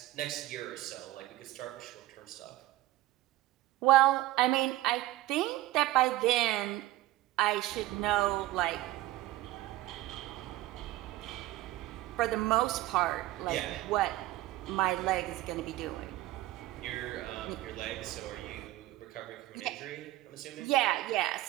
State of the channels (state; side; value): quieter; left; 16.3 dB